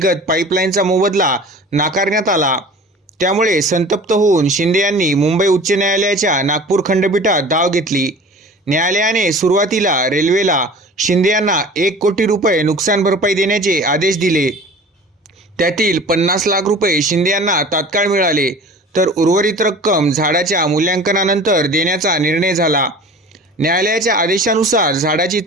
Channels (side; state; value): both; normal; correlation 0.41